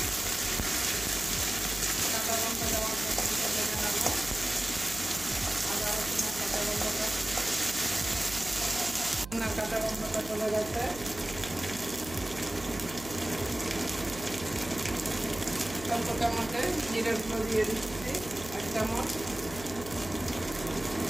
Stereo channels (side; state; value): right; noise; hum, 14 dB below the sound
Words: কাঁচা লঙ্কা দেওয়ার পর্যন্ত ভেজে নেব। আদা রসুনের কাঁচা গন্ধটা চলে গেছে। অল্প চামচে জিরের গুঁড়ো দিয়ে দিচ্ছি 1 চামচ,